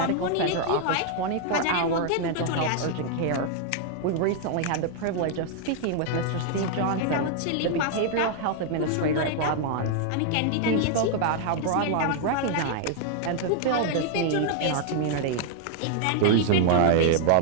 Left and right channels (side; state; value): both; different; correlation 0.00